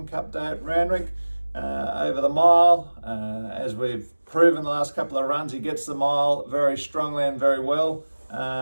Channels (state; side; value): inverted; both; correlation -1.00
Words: Cup Day at Randwick over the mile. As we've proven the last couple of runs, he gets the mile very strongly and very well.